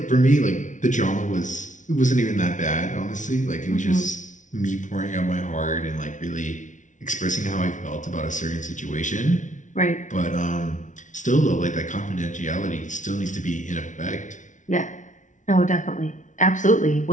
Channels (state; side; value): late; right; 0.37 ms